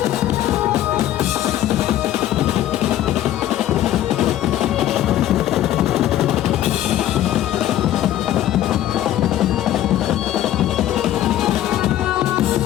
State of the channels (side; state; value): right; quieter; 12.7 dB